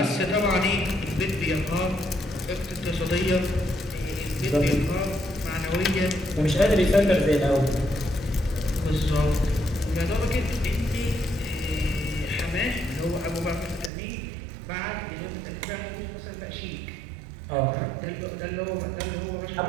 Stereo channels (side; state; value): left; drops out; at 13.9 s